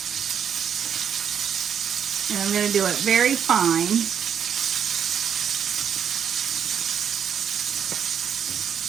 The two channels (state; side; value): quieter; left; 8.2 dB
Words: And I'm going to do it very fine.